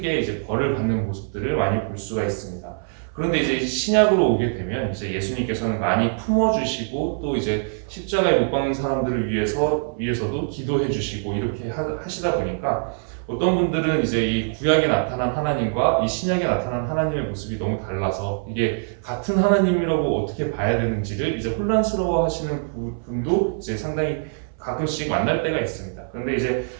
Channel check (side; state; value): left; silent; 59 dB below the other